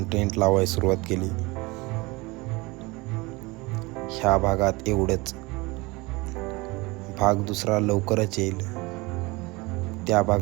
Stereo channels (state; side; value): quieter; left; 23.9 dB